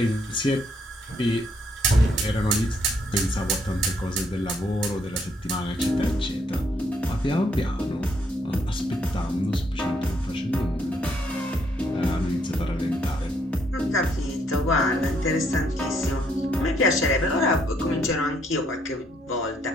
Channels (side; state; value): both; normal; correlation 0.71